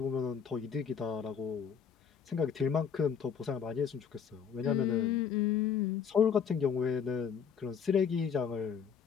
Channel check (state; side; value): quieter; right; 7.1 dB